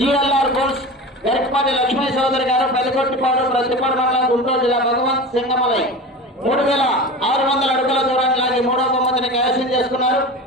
బుల్స్ గరికపాటి లక్ష్మీ చౌదరి గారు, పెదకొట్టిపాడు, ప్రతిపాడు మండలం, గుంటూరు జిల్లా. భగవంత్ సింగమలై 3600 అడుగుల దూరాన్ని లాగి మూడవ బహుమతిని కైవసం చేసుకున్నారు.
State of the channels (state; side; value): normal; both; correlation 0.31